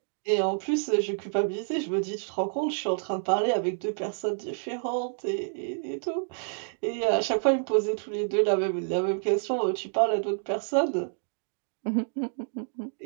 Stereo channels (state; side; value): silent; left; digital silence